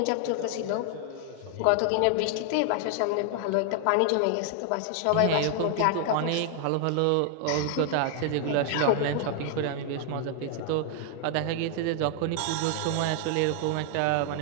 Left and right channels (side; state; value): both; different; correlation 0.00